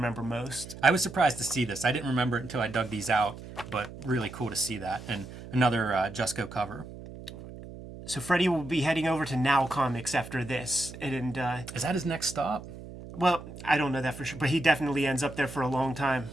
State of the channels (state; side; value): noise; right; hum, 13 dB below the sound